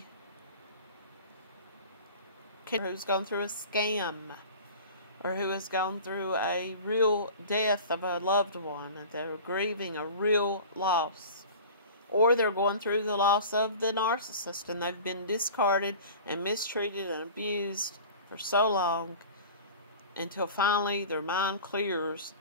Who's gone through a scam, or who has gone through a real death of a loved one, and they're grieving a real loss. Or they're going through the loss of the narcissist, and they've been discarded and mistreated and abused for so long, until finally their mind clears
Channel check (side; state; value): both; inverted; correlation -0.40